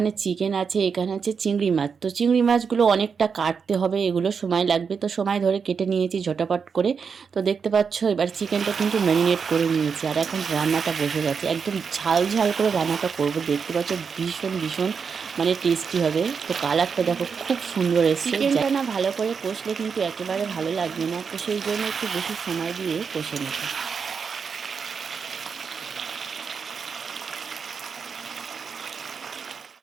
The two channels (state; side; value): quieter; left; 6.0 dB